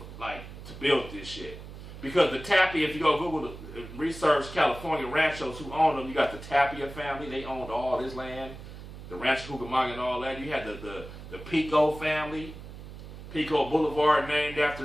build this shit. Because the Tapia, if you go Google research California ranchos who owned them, you got the Tapia family. They owned all this land, the Rancho Cucamonga and all that. You had the Pico family, Pico Boulevard named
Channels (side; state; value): right; noise; hum, 13 dB below the sound